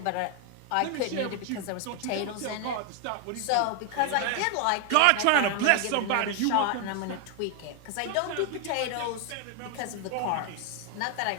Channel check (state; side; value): different; both; correlation 0.01